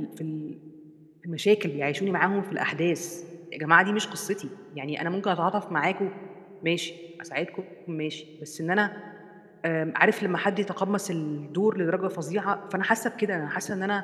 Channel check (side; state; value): both; identical; correlation 1.00